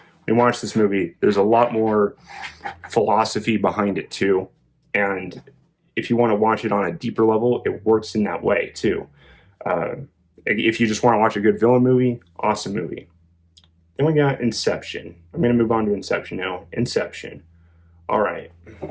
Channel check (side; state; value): both; identical; correlation 1.00